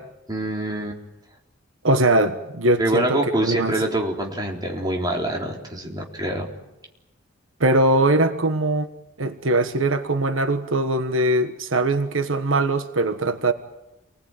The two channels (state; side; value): normal; both; correlation 0.05